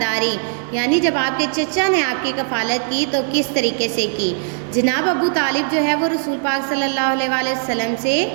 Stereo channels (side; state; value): left; silent; 66 dB below the other